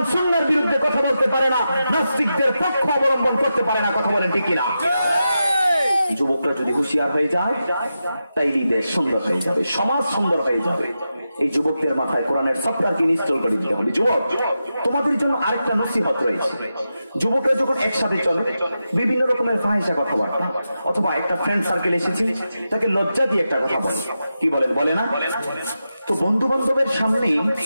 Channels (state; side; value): inverted; both; correlation -0.89